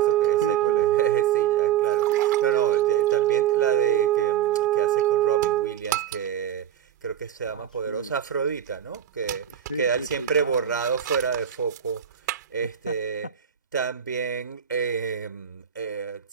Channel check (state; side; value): quieter; left; 9.7 dB